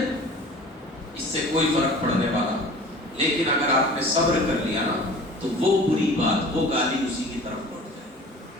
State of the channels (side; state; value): both; normal; correlation 0.43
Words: اس سے کوئی فرق پڑنے والا. لیکن اگر آپ نے صبر کر لیا نا تو وہ بری بات، وہ گالی اسی کی طرف لوٹ جائے.